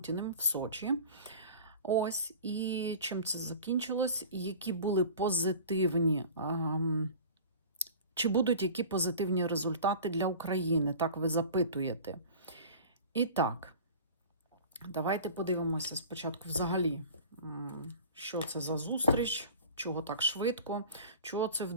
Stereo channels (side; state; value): both; inverted; correlation -0.40